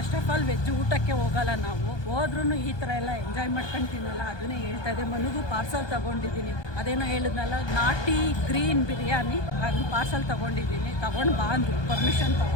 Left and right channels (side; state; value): right; late; 1.2 ms